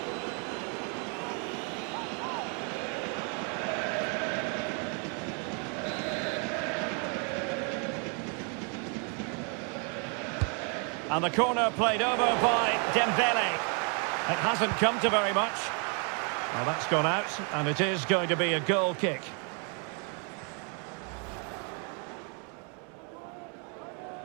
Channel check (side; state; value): left; quieter; 37.7 dB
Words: And the corner played over by Dembele. It hasn't come to very much. Well, that's gone out, and it is going to be a goal kick.